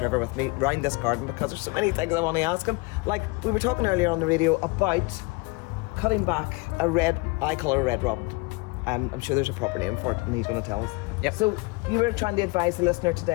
with me around this garden because there's so many things I want to ask him. Like, we were talking earlier on the radio about cutting back I call it a red robin. I'm sure there's a proper name for it, and he's going to tell us. Yep. So you were trying to advise the listener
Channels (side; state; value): right; quieter; 26.6 dB